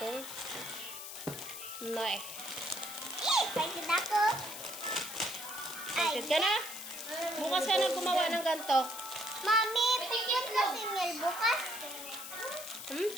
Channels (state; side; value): noise; left; hiss, 9 dB below the sound